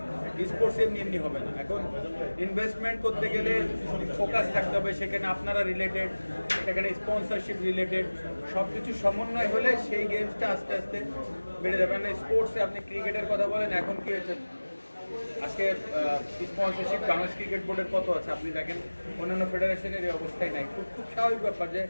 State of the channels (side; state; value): both; inverted; correlation -1.00